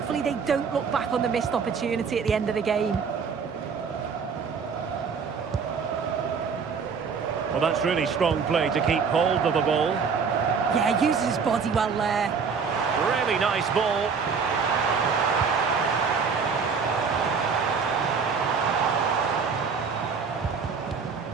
they don't look back on the missed opportunity at the end of the game. Well, that's really strong play to keep hold of the ball. Yeah, uses his body well there. Really nice ball.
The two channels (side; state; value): left; quieter; 5.7 dB